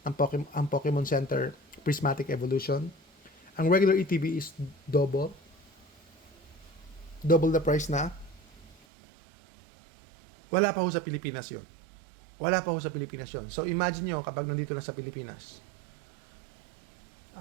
ang Pokemon Center Prismatic Evolution. Ang regular ETB is double the price na. Wala pa ho sa Pilipinas yun. So imagine nyo kapag nandito na sa Pilipinas.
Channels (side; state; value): left; drops out; at 8.8 s